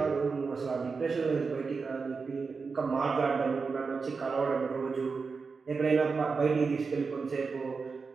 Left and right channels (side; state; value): left; quieter; 4.8 dB